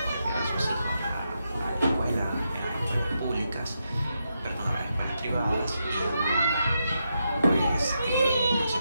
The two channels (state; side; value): inverted; both; correlation -0.84